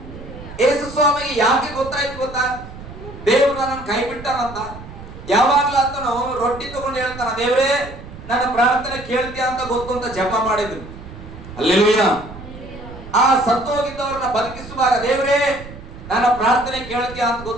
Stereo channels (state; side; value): noise; right; rumble, 14 dB below the sound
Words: ಯೇಸುಸ್ವಾಮಿಗೆ ಯಾಕೆ ಗೊತ್ತಾಯ್ತು ಗೊತ್ತಾ? ದೇವರು ನನ್ನ ಕೈ ಬಿಟ್ಟಾನಂತ. ಯಾವಾಗ್ಲೂ ಆತನು ರೊಟ್ಟಿ ತಗೊಂಡು ಹೇಳ್ತಾನ, ದೇವರೇ ನನ್ನ ಪ್ರಾರ್ಥನೆ ಕೇಳ್ತೀಯ ಅಂತ ಗೊತ್ತು ಅಂತ ಜಪ ಮಾಡಿದ್ರು. ಹಲ್ಲೆಲೂಯಾ. ಆ ಸತ್ತೋಗಿದ್ದವ್ರನ್ನ ಬದುಕಿಸುವಾಗ, ದೇವರೇ ನನ್ನ ಪ್ರಾರ್ಥನೆ ಕೇಳ್ತೀಯ ಅಂತ